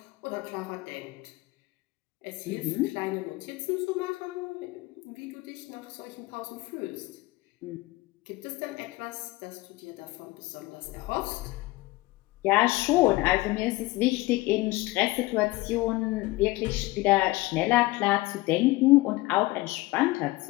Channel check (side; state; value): right; quieter; 20.3 dB